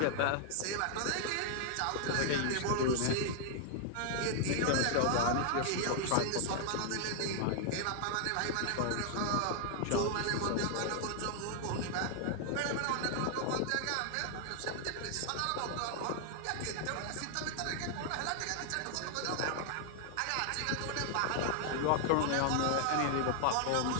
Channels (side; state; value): both; different; correlation 0.00